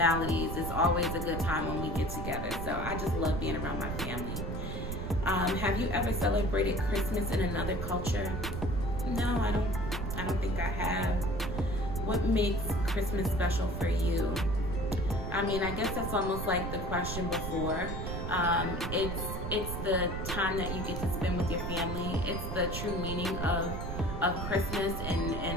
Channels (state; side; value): noise; right; rumble, 5 dB below the sound